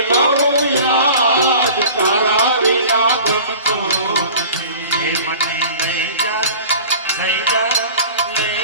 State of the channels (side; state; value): both; inverted; correlation -0.42